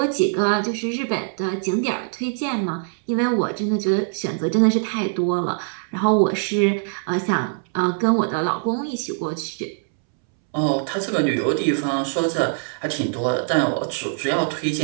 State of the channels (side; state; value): left; silent; 64 dB below the other